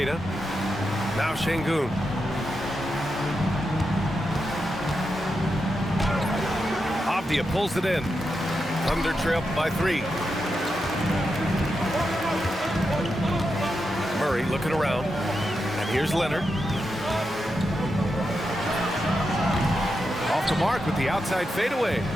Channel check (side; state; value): both; normal; correlation 0.87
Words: Now Şengün. Avdia pulls it in. Thunder trail by 3. Murray looking around. And here's Leonard. Off the mark with the outside fadeaway.